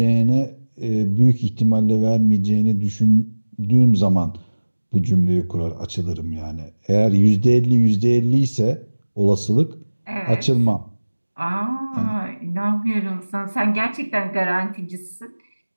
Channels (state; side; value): inverted; both; correlation -1.00